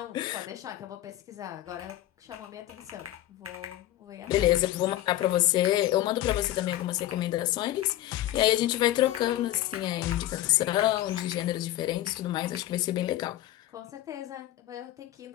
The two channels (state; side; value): quieter; right; 14.3 dB